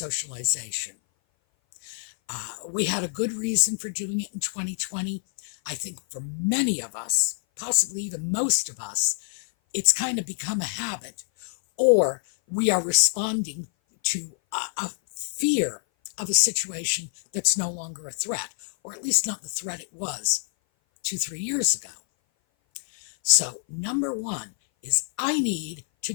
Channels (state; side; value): silent; right; 57 dB below the other